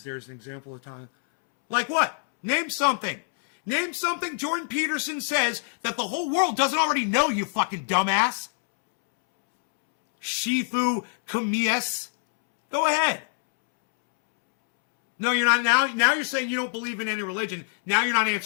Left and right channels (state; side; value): silent; right; 62 dB below the other